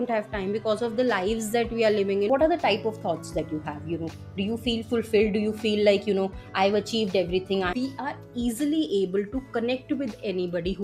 have time because of the lives that we are living in. What are the type of thoughts that you have? Do you feel fulfilled? Do you feel like, I've achieved everything? We are easily able to connect with anybody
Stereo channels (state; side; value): identical; both; correlation 1.00